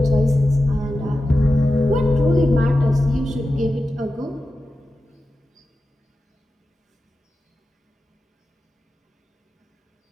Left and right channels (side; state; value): both; normal; correlation 0.93